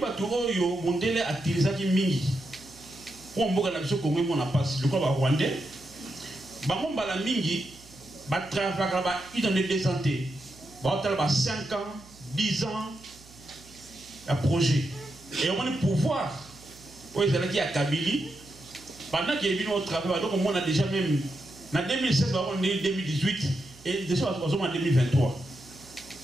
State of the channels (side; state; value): right; noise; hum, 23 dB below the sound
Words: oyo mondele atilisaki mingi pour mboka na biso Congo mona passe le quoi ba rwandais bango mbala mingi ba travailler ba identité de santé ba hôtel ba 5 ans 10 ans un projet et on a pouvoir oui c'est là qui a Kabili pendant qu'il est venu au travail donc on a déjà même en 2016 on est 2018 et déjà on est en 2023